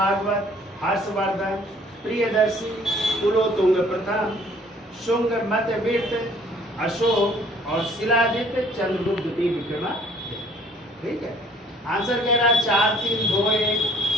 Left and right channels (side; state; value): both; normal; correlation 0.57